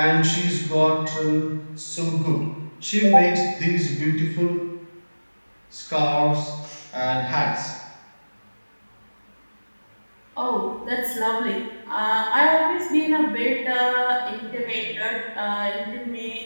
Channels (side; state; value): both; inverted; correlation -1.00